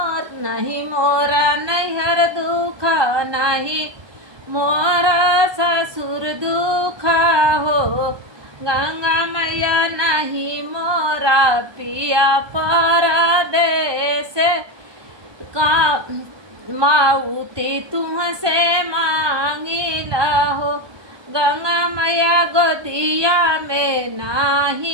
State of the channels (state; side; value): late; left; 1.2 ms